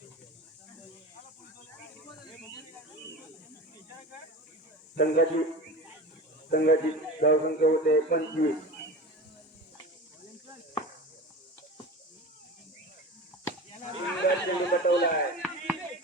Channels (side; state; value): both; normal; correlation 0.32